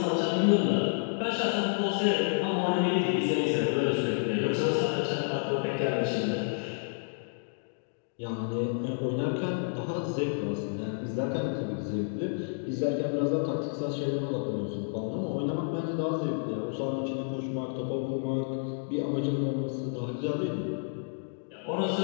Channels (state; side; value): silent; right; digital silence